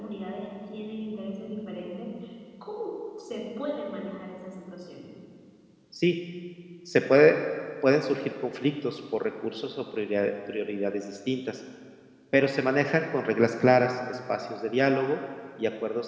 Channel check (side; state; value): both; identical; correlation 1.00